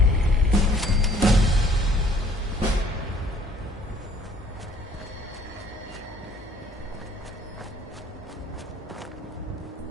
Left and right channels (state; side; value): normal; both; correlation 0.58